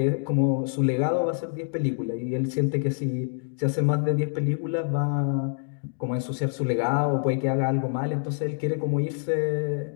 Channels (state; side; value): silent; right; digital silence